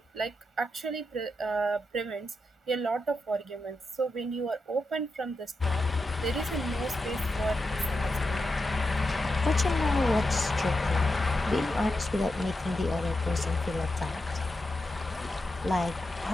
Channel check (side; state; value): both; normal; correlation 0.87